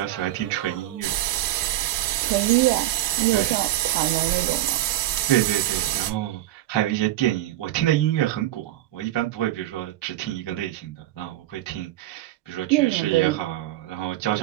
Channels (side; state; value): left; quieter; 14.7 dB